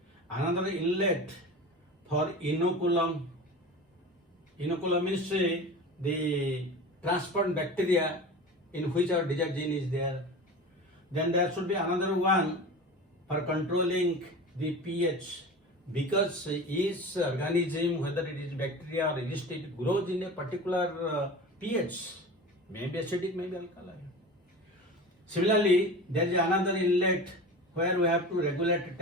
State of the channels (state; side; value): normal; both; correlation 0.33